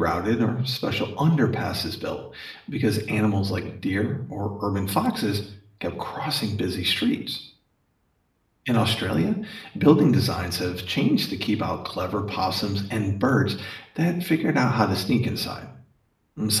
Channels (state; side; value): identical; both; correlation 1.00